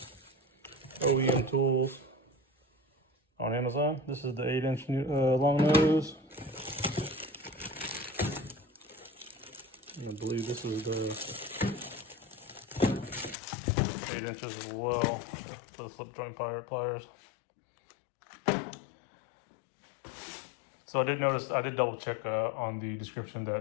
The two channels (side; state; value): right; drops out; at 13.4 s